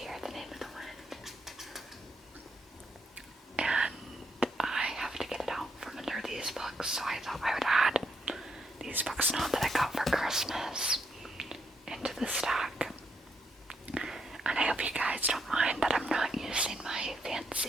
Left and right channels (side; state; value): both; normal; correlation 0.77